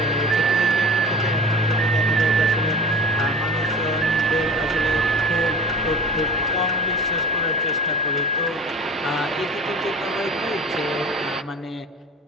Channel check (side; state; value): both; normal; correlation 0.37